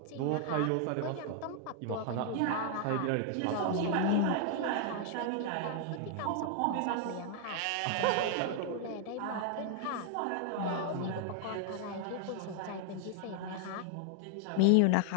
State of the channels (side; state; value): both; different; correlation 0.00